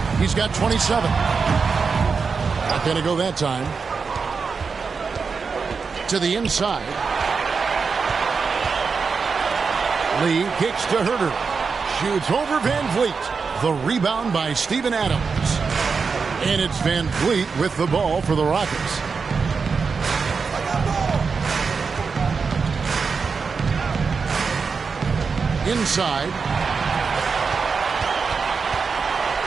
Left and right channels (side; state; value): left; quieter; 5.2 dB